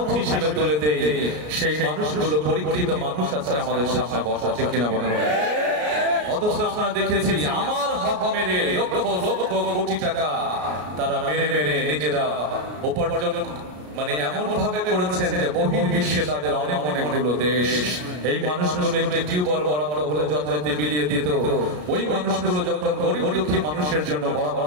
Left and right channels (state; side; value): late; left; 33 ms